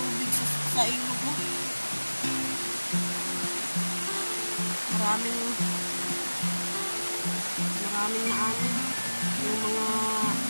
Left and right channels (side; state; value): both; inverted; correlation -1.00